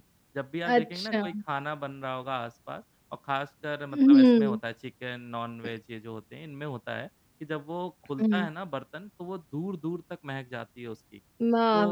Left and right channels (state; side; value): identical; both; correlation 1.00